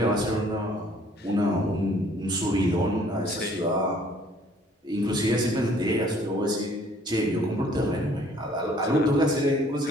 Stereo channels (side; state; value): both; normal; correlation 0.58